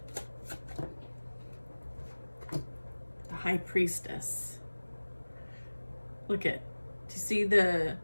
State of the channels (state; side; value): inverted; both; correlation -1.00